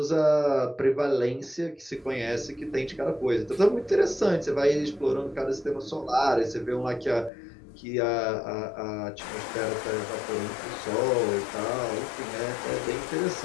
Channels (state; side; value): drops out; right; at 7.3 s